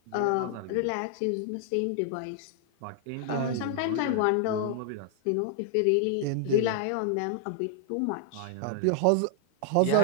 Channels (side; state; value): both; different; correlation 0.00